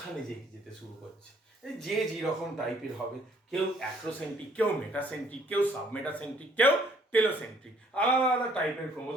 যেতে শুরু করছে। যে যেরকম টাইপের হবে, কেউ অ্যাক্রোসেন্ট্রিক, কেউ মেটাসেন্ট্রিক, কেউ সাবমেটাসেন্ট্রিক, কেউ টেলোসেন্ট্রিক, আলাদা আলাদা টাইপের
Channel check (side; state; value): both; normal; correlation 0.63